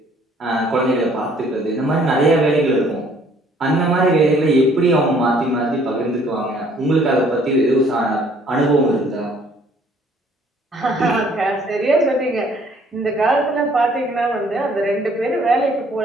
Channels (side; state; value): both; normal; correlation 0.60